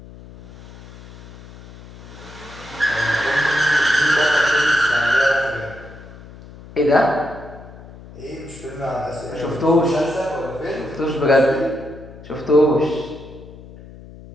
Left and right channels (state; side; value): noise; left; hum, 18 dB below the sound